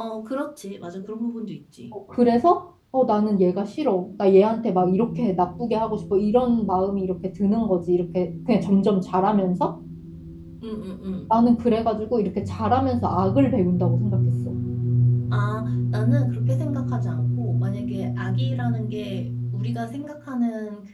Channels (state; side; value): identical; both; correlation 1.00